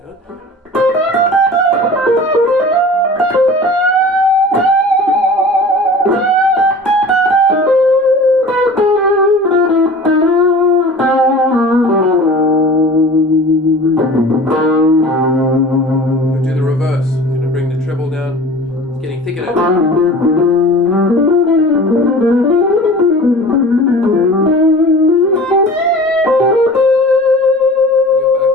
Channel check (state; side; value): normal; both; correlation 0.40